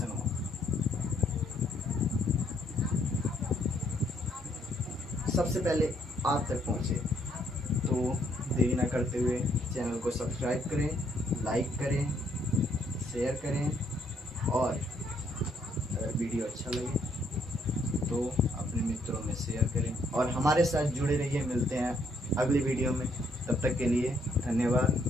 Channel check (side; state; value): both; normal; correlation 0.70